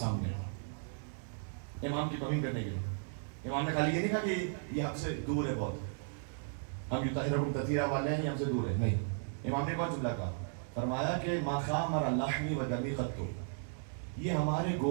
سامنے امام کی توہین کرنے کے لیے۔ امام نے خالی یہ نہیں کہا کہ یہ ہم سے دور ہے بہت، ہم یطہرکم تطہیرا والے ہیں، یہ ہم سے دور ہے، نہیں۔ امام نے کون جملہ کہا؟ فرمایا کہ ما خامر لحمی و دمی قط، یہ ہمارے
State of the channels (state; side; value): silent; left; digital silence